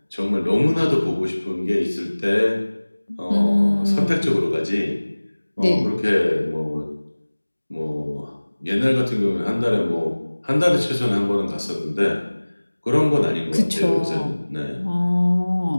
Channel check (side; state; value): both; inverted; correlation -1.00